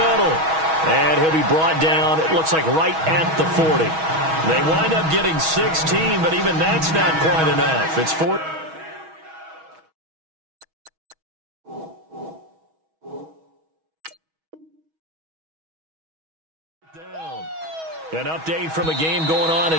And he'll be brought down, it looks like right at the 40. They wind up getting 16, but even that's not quite enough. It's 4. An update from a game going on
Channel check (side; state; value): left; late; 6.2 ms